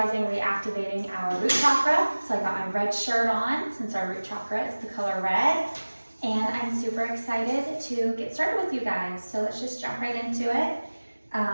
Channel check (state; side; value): inverted; both; correlation -1.00